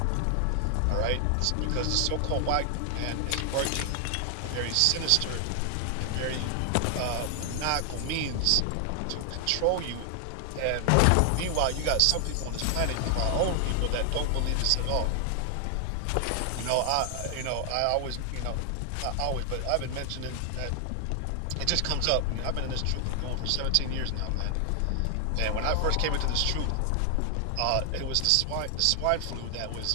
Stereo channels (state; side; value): different; both; correlation 0.00